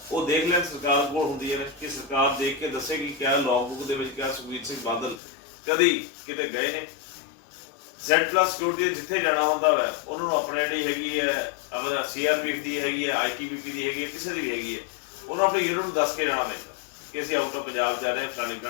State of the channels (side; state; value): right; drops out; at 5.2 s